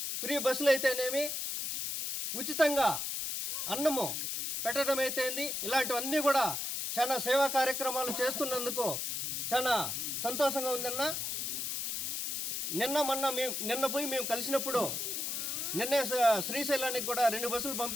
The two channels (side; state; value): left; noise; hiss, 2 dB below the sound